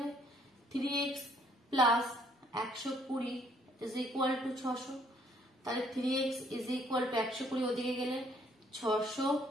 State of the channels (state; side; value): normal; both; correlation 0.65